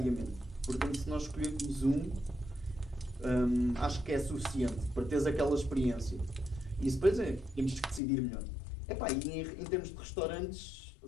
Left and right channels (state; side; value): drops out; right; at 8.0 s